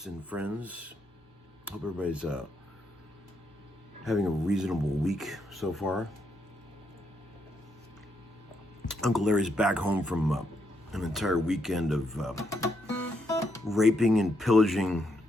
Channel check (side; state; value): both; normal; correlation 0.78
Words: and friends. Hope everybody's having a reasonable week so far. Uncle Larry's back home from an entire weekend of raping and pillaging